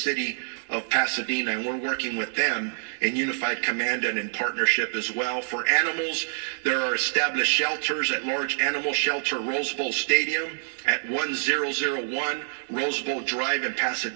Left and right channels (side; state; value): left; silent; digital silence